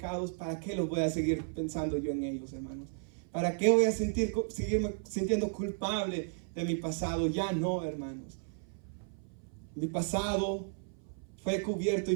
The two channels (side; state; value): left; silent; 55 dB below the other